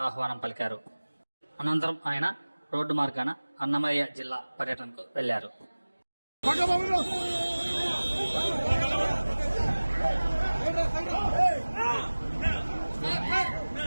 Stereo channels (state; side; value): inverted; both; correlation -1.00